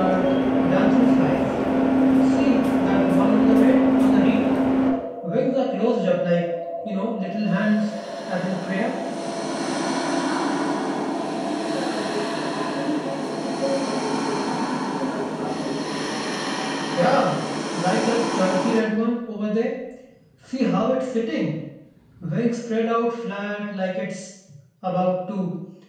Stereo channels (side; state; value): both; identical; correlation 1.00